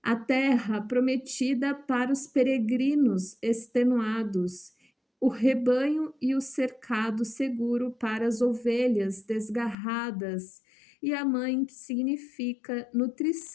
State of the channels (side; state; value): right; drops out; at 9.8 s